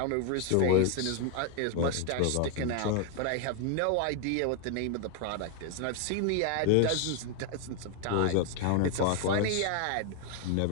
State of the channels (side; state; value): both; different; correlation 0.01